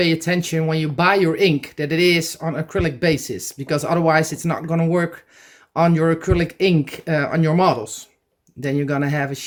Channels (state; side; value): identical; both; correlation 1.00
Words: attention when you buy your ink that it is on acrylic basis, because otherwise it's not going to work on your acrylic ink on your models. Then you're going to have a